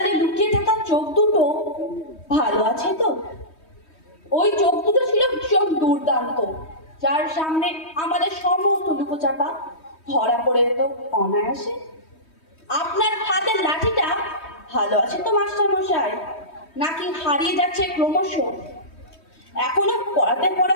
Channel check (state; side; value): late; right; 3.2 ms